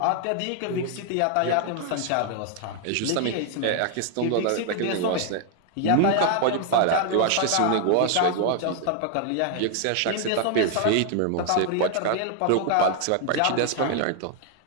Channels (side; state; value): both; different; correlation 0.00